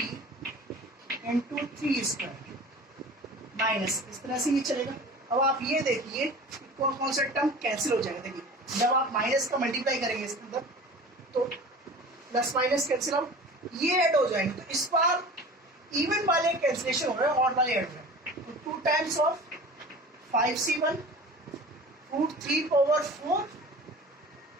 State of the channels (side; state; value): both; normal; correlation 0.39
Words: into 3 square minus, इस तरह से ये चलेगा। अब आप ये देखिए कौन कौन सा टर्म कैंसिल हो जाएगा। देखिए जब आप माइनस का मल्टीप्लाई करेंगे इसके अंदर तो प्लस माइनस कैंसिल आउट, ये ऐड हो जाएंगे, तो इस बार इवन वाले कैंसिलेशन हो रहे हैं, ऑड वाले ऐड हो रहे हैं। तो 2 times of 5C1 root 3 power 4